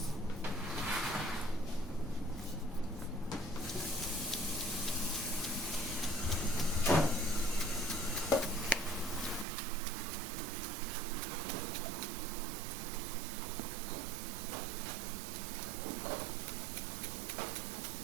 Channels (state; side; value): drops out; left; at 9.5 s